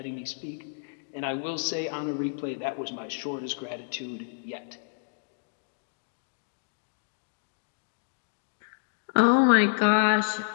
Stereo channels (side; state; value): right; silent; digital silence